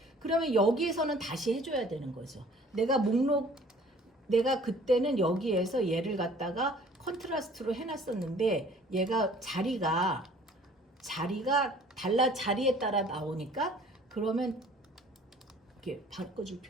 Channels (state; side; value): normal; both; correlation 0.53